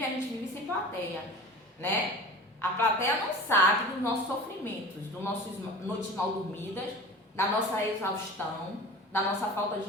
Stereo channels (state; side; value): normal; both; correlation 0.38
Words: sem plateia, né? A plateia não sabe dos nossos sofrimentos, dos nossos noites mal dormidas, da nossa exaustão, da nossa falta